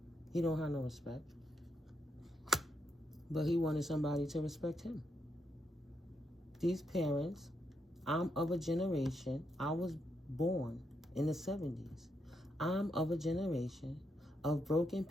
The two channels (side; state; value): both; normal; correlation 0.80